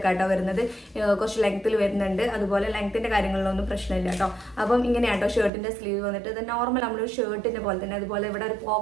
ആട്ടോ വരുന്നത്, കുറച്ച് ലെങ്ത്തിൽ വരുന്നുണ്ട്. അതുപോലെ ലെങ്ത്തിന്റെ കാര്യങ്ങളിലൊന്നും പ്രശ്നമില്ല കേട്ടോ. അപ്പം ഇങ്ങനെയാണ് ഷർട്ടിന്റെ സ്ലീവ് വന്നിട്ട് ഇത് നോർമൽ നമ്മളൊരു ഷർട്ടിന്റെ പോലെ തന്നെ. അതുപോലെ ഇവിടെ ഒരു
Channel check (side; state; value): left; drops out; at 5.5 s